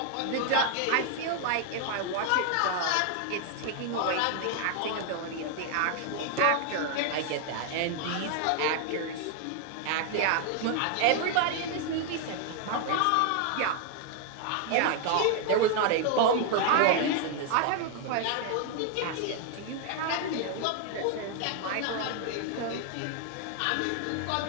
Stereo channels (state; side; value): different; both; correlation 0.00